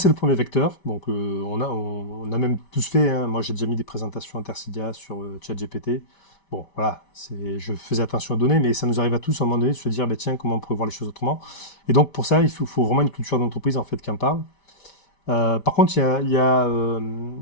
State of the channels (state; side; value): late; right; 5.1 ms